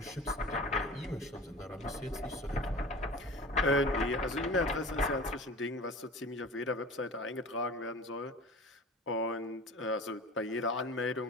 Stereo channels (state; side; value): normal; both; correlation 0.38